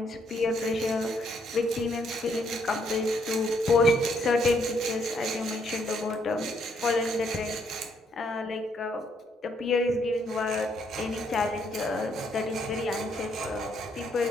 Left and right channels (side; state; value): both; normal; correlation 0.71